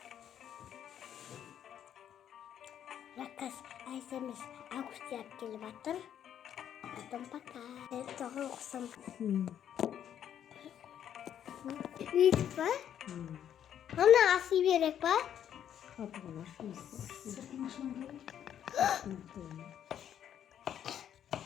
Rakas Ayşemiz Ağustos yap gelip atır. Adım bakar. Evet doğru okusam. Büyük var. Ona asıl bir yere var. Kapılar.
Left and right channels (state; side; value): quieter; right; 9.8 dB